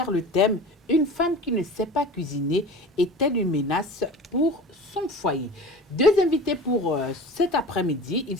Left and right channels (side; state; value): both; normal; correlation 0.37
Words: le thème « Une femme qui ne sait pas cuisiner est-elle une menace pour son foyer ?» Deux invités pour cet après-midi. Il